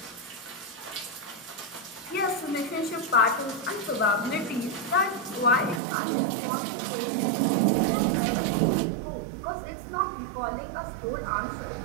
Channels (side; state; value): left; drops out; at 5.8 s